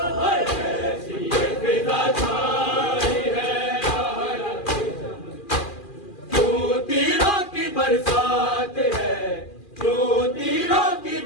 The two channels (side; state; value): right; late; 2.4 ms